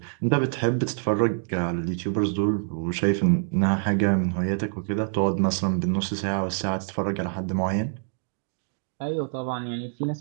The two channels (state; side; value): silent; left; digital silence